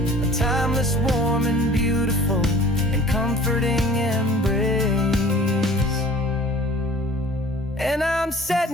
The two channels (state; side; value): normal; both; correlation 0.47